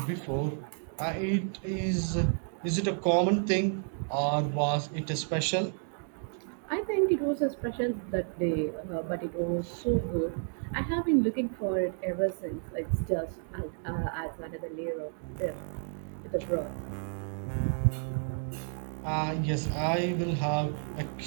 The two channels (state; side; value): silent; left; 57 dB below the other